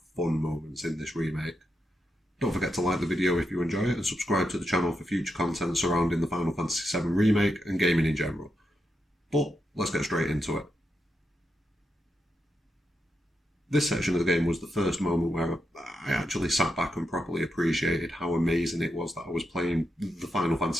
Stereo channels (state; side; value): normal; both; correlation 0.85